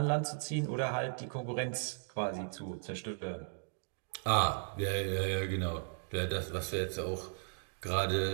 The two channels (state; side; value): silent; left; digital silence